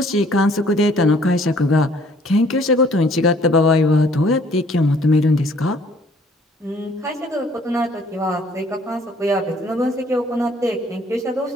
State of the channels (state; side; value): normal; both; correlation 0.59